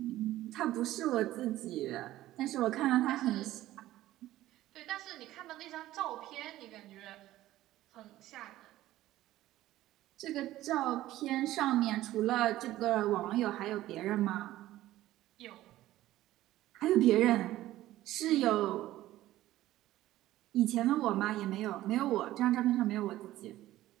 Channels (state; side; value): quieter; left; 15.1 dB